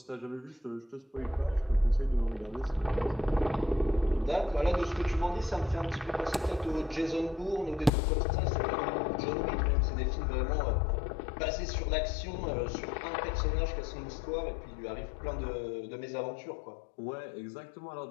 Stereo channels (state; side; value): drops out; right; at 7.9 s